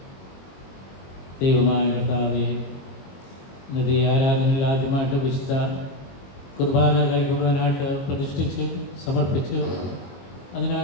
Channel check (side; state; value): right; late; 22 ms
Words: ദൈവമായ കർത്താവേ, ഇന്നത്തെ ആരാധനയിൽ ആദ്യമായിട്ട് വിശുദ്ധ കുർബാന കൈക്കൊള്ളുവാനായിട്ട് പ്രതിഷ്ഠിച്ചു സമർപ്പിച്ചു